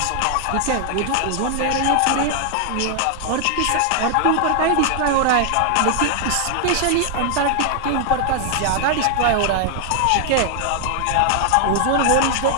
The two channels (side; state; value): both; different; correlation 0.00